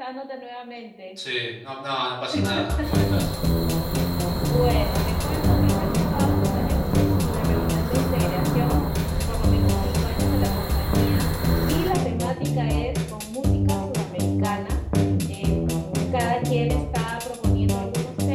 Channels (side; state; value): both; identical; correlation 1.00